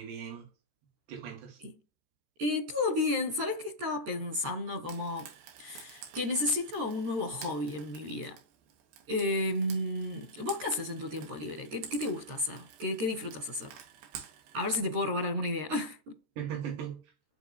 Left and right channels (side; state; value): left; late; 14 ms